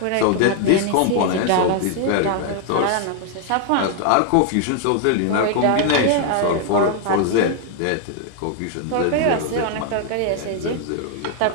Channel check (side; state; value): both; different; correlation 0.00